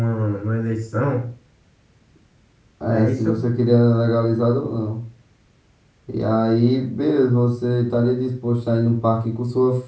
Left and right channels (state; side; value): identical; both; correlation 1.00